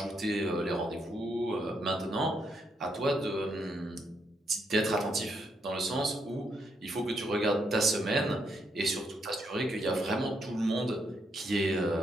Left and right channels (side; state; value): both; normal; correlation 0.77